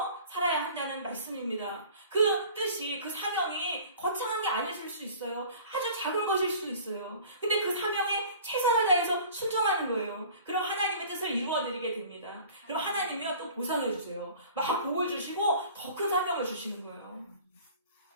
살아야 한다는 말씀입니다. 그 뜻이, 그 사명이 거창한 게 아니실 수 있어요. 아주 작은 것일 수 있어요. 근데 그 사명에 최선을 다해서 순종하는 거예요. 그럼 하나님의 뜻을 이루어드리게 됩니다. 그럼 하나님이요 또 보상해 주세요. 막 복을 주시고 더 큰 사명을 주시는 거예요.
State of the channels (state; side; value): inverted; both; correlation -0.45